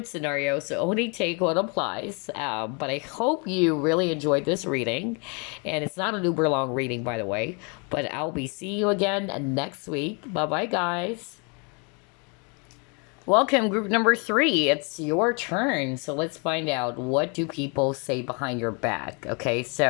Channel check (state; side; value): quieter; right; 34.2 dB